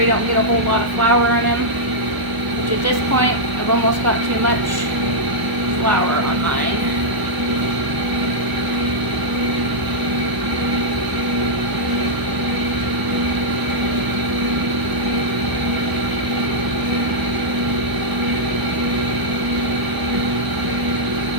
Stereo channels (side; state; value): left; late; 1.0 ms